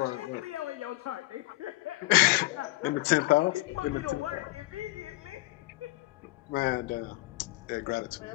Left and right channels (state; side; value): quieter; right; 20.7 dB